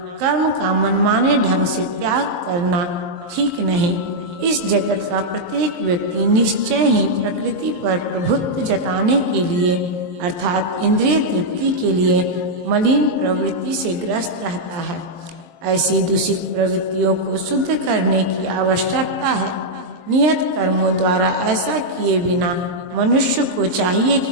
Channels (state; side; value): late; left; 23 ms